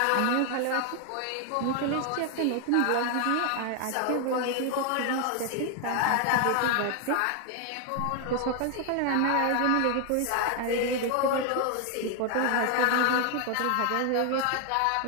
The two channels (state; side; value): different; both; correlation 0.00